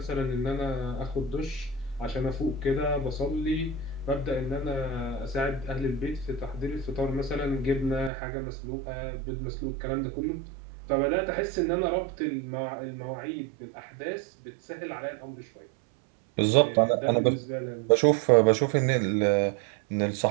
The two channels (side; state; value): left; drops out; at 8.1 s